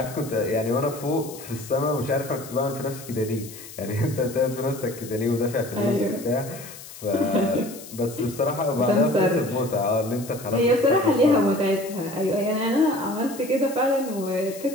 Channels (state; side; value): noise; left; hiss, 15 dB below the sound